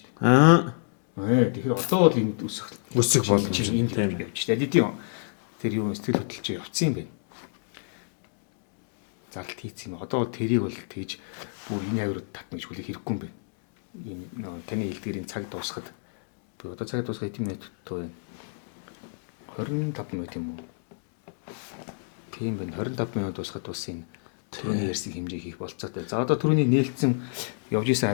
дээ. Тэгэхээр одоо бол энд өсөх чинь энд явж шүү дээ. LED-ийн тэр юу сэтгэл хөдлөлж явцсан юм байна. Зарлт хийцэн юм. Одоо бол тэрийг бол тэгж бүр энэ авирууд татна гэж хүлээх хэрэггүй юм байна. Энэ таны хэлдгэрийн цаг дуусахад одоо цаг дуусах хэдэн минут байна? 25 минут юм уу? Тийм байна. 25 минут дуусахад бас энэ түрүүний ярьсан хэмжээг хийх болцоотой. За одоо түрүүний нээлтсэн явж исэн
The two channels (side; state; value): right; silent; digital silence